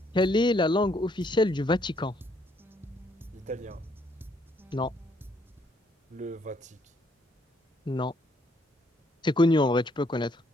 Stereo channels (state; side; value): normal; both; correlation 0.69